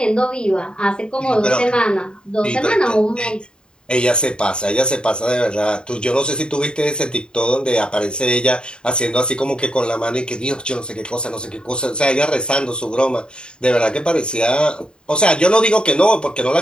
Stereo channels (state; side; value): late; right; 0.050 ms